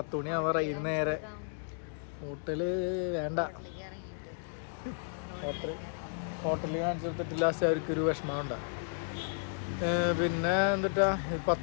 മണി ആവാറായി. നേരെ ഹോട്ടല് വേണ്ട, ഹോട്ടലിൽ കാണിച്ചു കൊടുത്തിട്ട് ലാസ്റ്റ് അവർക്കൊരു വിഷമം ഉണ്ടാകും. പിന്നെ എന്നിട്ടാ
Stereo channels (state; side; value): silent; right; digital silence